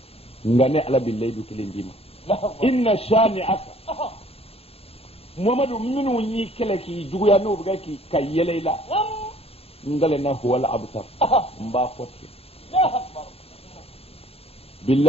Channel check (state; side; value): late; right; 0.29 ms